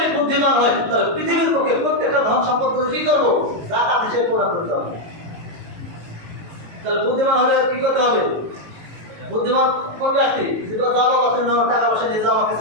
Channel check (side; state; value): left; late; 18 ms